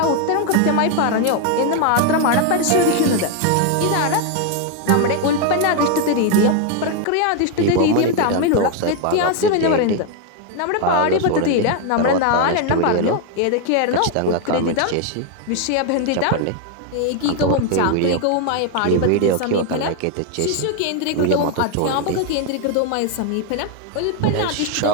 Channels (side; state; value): both; different; correlation 0.01